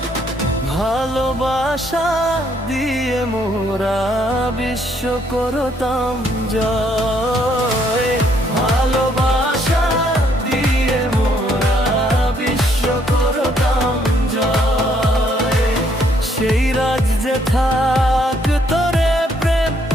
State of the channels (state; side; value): normal; both; correlation 0.69